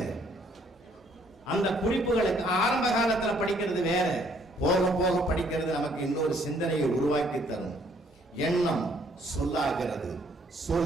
அந்த குறிப்புகளுக்கு ஆரம்ப காலத்துல படிக்கிறது வேற, போக போக படிக்கிறது நமக்கு இன்னொரு சிந்தனையை உருவாக்கி தரும். எண்ணம் சொல்லாகிறது,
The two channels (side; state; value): both; normal; correlation 0.65